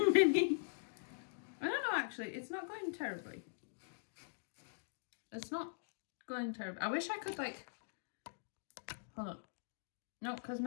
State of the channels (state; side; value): silent; right; digital silence